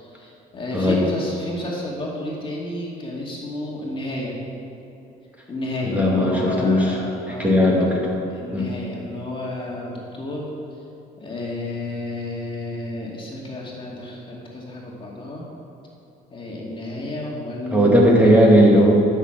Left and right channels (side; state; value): both; normal; correlation 0.64